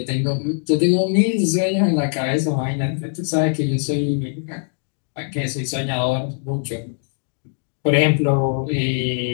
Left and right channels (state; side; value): silent; right; digital silence